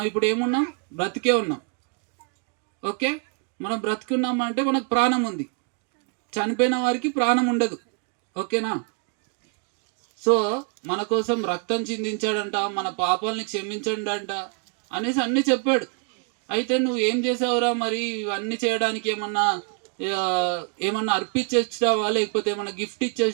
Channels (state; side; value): quieter; left; 38.7 dB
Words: ఇప్పుడు ఏమున్నాం? బ్రతికే ఉన్నాం. ఓకే, మనం బ్రతికున్నాం అంటే మనకు ప్రాణం ఉంది. చనిపోయిన వారికి ప్రాణం ఉండదు. ఓకేనా? సో మన కోసం రక్తం చిందించాడంట, మన పాపాలని క్షమించండంట అనేసి అన్నీ చెప్పాడు. అయితే నువ్వు ఏం చేసావురా మరి? ఇవన్నీ చేయడానికి ఏమన్నా అర్పించి వచ్చినావా, లేకపోతే ఏమన్నా గిఫ్ట్